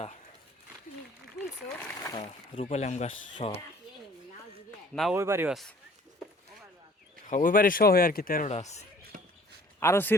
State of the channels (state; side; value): normal; both; correlation 0.54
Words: হ্যাঁ রূপালি আম গাছ সহ না, ওই বাড়িও আছে, ওই বাড়ি সহ আর কি 13টা আছে। আরো